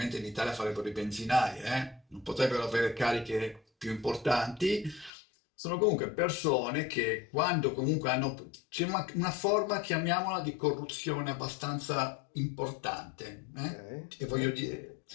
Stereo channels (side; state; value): right; drops out; at 5.1 s